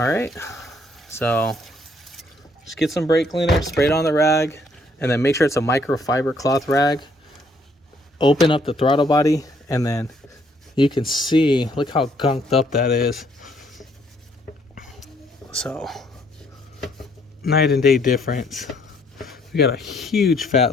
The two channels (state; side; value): normal; both; correlation 0.67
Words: right, so just get some brake cleaner, spray it on the rag, and then make sure it's a microfiber cloth rag. Open up the throttle body, and then you can see, look how gunked up that is. So night and day difference. We got a huge